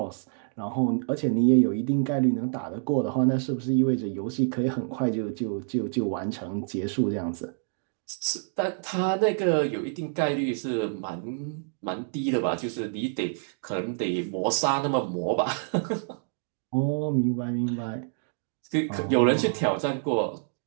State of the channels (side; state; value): left; silent; digital silence